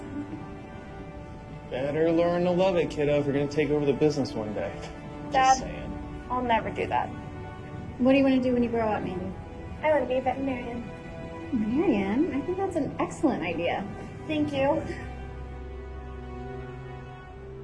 Better learn to love it, kiddo, if you're gonna take over the business one day. Dad, Just saying. I'll never do that. What do you want to do when you grow up, Mandy? I want to be a veterinarian. Marianne, I think that's an excellent idea. Thank you.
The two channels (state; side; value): identical; both; correlation 1.00